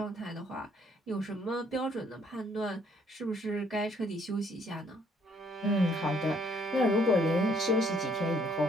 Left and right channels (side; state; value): both; normal; correlation 0.65